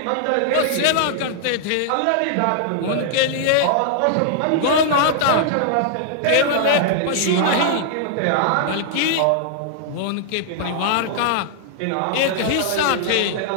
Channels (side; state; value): both; different; correlation -0.01